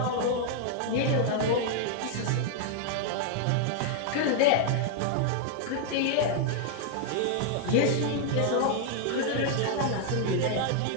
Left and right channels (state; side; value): different; both; correlation 0.00